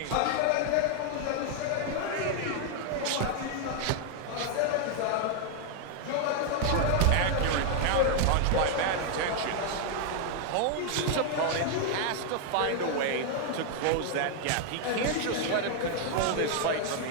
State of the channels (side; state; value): both; different; correlation 0.00